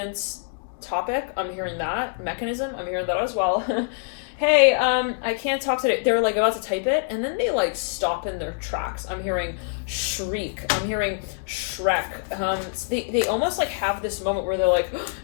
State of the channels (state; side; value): silent; right; digital silence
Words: topic. I'm hearing that mechanism. I'm hearing that as well. Hey, I can't talk today. They're like about to type it, and then they like stop in their tracks. I'm hearing shriek. I'm hearing Shrek. They almost like have this moment where they're like,